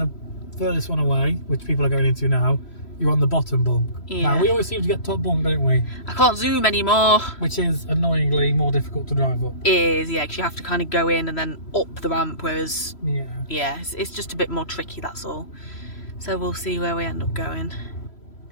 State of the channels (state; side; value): late; right; 3.1 ms